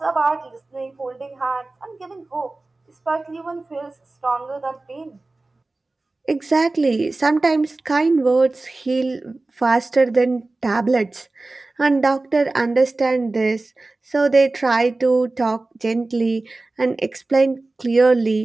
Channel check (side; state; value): left; quieter; 3.2 dB